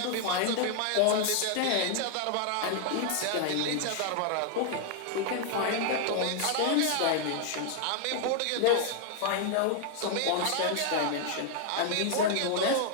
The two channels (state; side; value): different; both; correlation 0.00